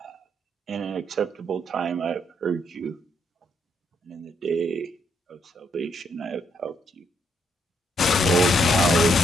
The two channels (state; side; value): normal; both; correlation 0.75